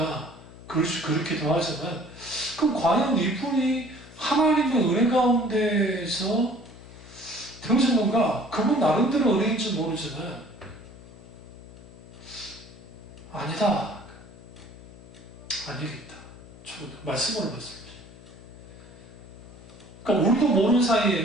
그렇기도 하지만, 그럼 과연 이분이 하나님의 은혜 가운데서 되어진 건가? 그분 나름대로 은혜인지 모르지만 아니다. 아니겠다. 저도 말씀으로 봤습니다. 그러니까 우리도 모르는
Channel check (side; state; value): left; noise; hum, 18 dB below the sound